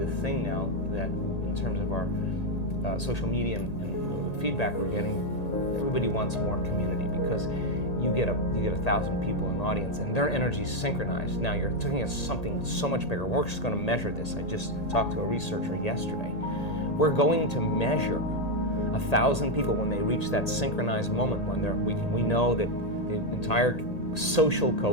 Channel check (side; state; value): right; late; 1.8 ms